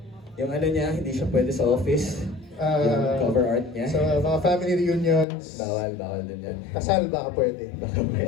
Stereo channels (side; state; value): right; drops out; at 5.2 s